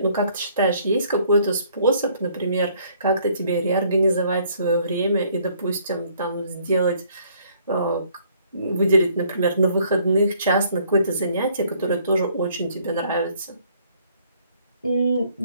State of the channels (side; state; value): both; inverted; correlation -0.63